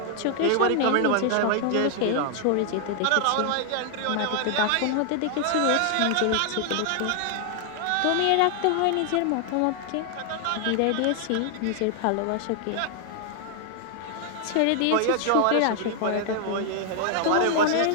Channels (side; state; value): both; different; correlation 0.00